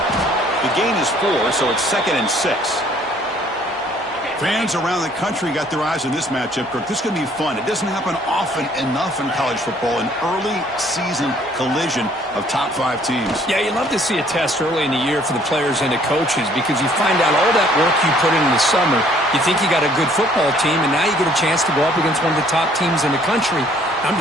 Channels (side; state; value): both; normal; correlation 0.60